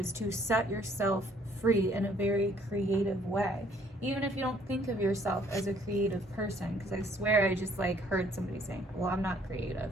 to set yourself free in a very creative way. Even if you don't think of yourself as a creative person, because I swear I just heard somebody saying, well, I'm not creative.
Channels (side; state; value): both; normal; correlation 0.62